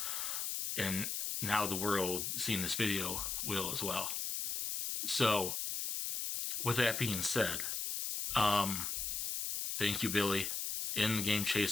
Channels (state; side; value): noise; left; hiss, 2 dB below the sound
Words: And now the world seeing this video will as well. So with that being said, thank you, Billy, in the Game